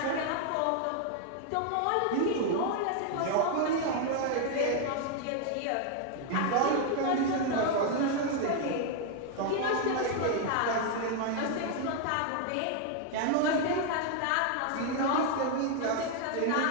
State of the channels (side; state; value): both; different; correlation 0.00